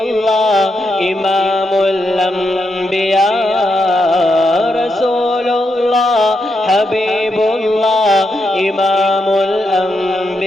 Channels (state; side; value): normal; both; correlation 0.83